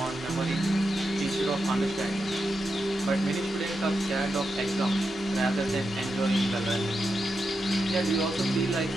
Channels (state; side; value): normal; both; correlation 0.87